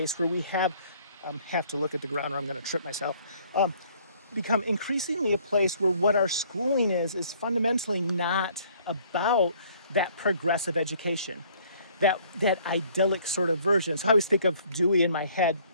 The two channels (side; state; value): both; inverted; correlation -0.60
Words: where we have to look at the ground or I'm going to trip myself. Become increasingly a place where what our schooling is fundamentally not about that progressive education, that idyllic sort of version. So I always think of Dewey in my head.